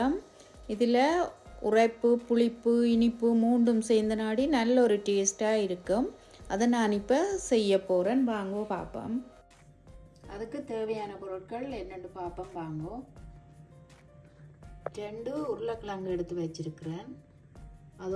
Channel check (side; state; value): both; identical; correlation 1.00